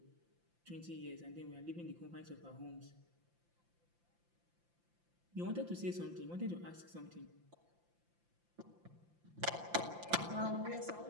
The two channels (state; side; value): late; left; 5.8 ms